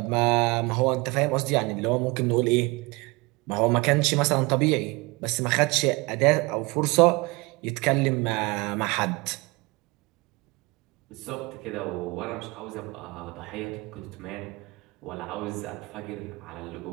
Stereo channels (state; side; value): quieter; left; 24.9 dB